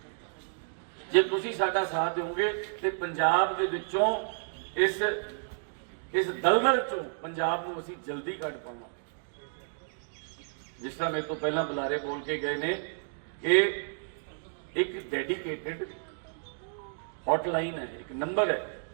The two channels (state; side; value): silent; left; digital silence